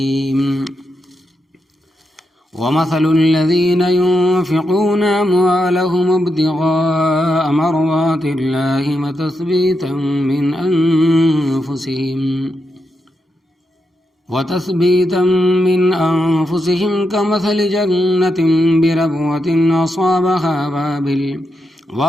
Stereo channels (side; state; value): both; normal; correlation 0.85